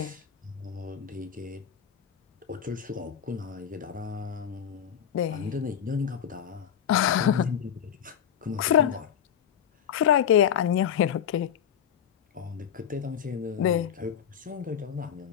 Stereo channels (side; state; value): right; quieter; 8.8 dB